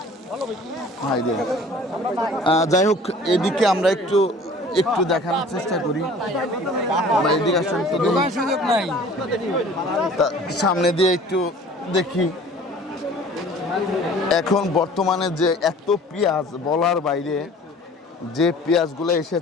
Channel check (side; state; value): both; normal; correlation 0.48